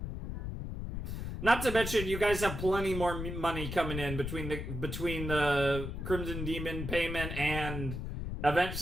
Not to mention, you guys have plenty more money coming in between the Crimson Demon payment and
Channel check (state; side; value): noise; left; rumble, 5 dB below the sound